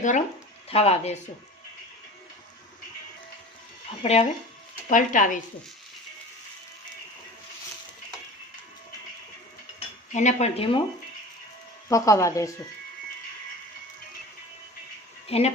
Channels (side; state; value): both; normal; correlation 0.36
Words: ગરમ થવા દેશું. આપણે હવે પલટાવીશું. એને પણ ધીમું પકાવવા દેશું. એને